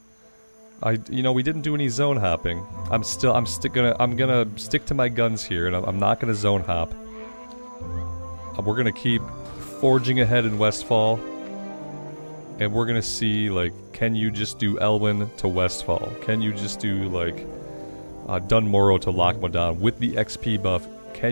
You know, we didn't do any zone hopping. I'm gonna stick to my guns here, and I'm not gonna zone hop. We're gonna keep forging ahead in Westfall, and we're gonna see, like, can you just do Elwyn to Westfall? Can you just do, like, Dunmorrow to Lochmodan with the XP buff?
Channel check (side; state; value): both; inverted; correlation -1.00